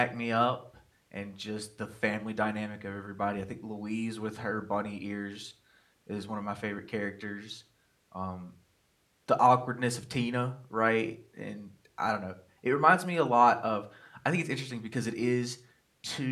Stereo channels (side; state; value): both; identical; correlation 1.00